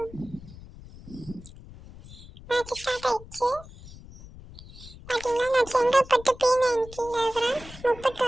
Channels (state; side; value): noise; left; rumble, 17 dB below the sound